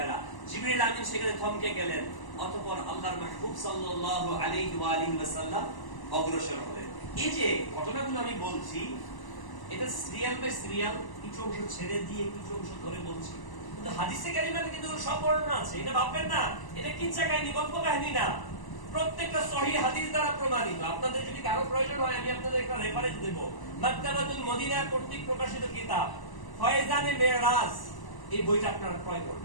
জিবরাইল আমিন সেখানে থমকে গেলেন, অতঃপর আল্লাহর মাহবুব সাল্লাল্লাহু আলাইহি ওয়াসাল্লাম অগ্রসর হলেন। এই যে ঘটনাগুলো আমি বলছি, এটা সিরিয়াল বাই সিরিয়াল, কিছু অংশ ছেড়ে দিয়ে কিছু অংশ ধরে বলছি, কিন্তু হাদিসে কারিমাতে কিন্তু সব বর্ণনা আছে। এটা ভাববেন না এটা কিচ্ছা কাহিনী, গল্প কাহিনী না, প্রত্যেকটা সহিহ হাদিস দ্বারা প্রমাণিত। আপনাদের যদি কারো প্রয়োজন হয় আমি আপনাদের একটা রেফারেন্স দেব, মাকতাবাতুল মদিনা কর্তৃক প্রকাশিত কিতাব ফয়জানে মেরাজ, এই বইটা আপনারা ক্রয়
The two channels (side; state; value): right; late; 1.0 ms